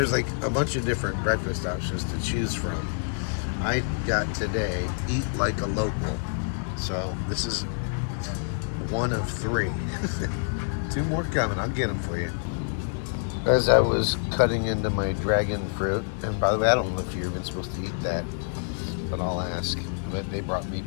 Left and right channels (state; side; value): silent; right; digital silence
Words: like a bunch of different breakfast options to choose from. I got today, eat like a local. So this is one of 3. 2 more coming, I'll get them for you. As I was cutting into my dragon fruit, and by the way, I don't know if you're even supposed to eat that, but I'll ask. They brought me